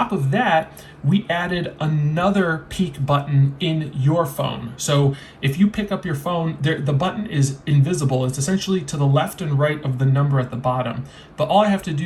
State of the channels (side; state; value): both; identical; correlation 1.00